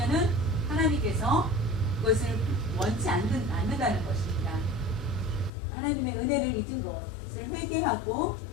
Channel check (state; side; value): drops out; right; at 5.5 s